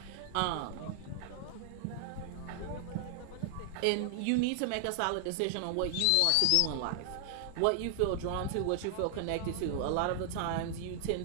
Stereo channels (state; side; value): different; both; correlation 0.00